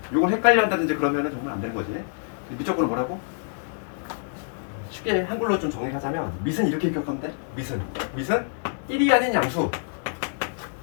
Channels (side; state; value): right; silent; digital silence